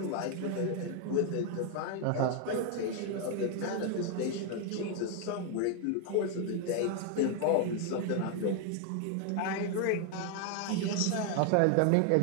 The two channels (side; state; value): both; different; correlation 0.00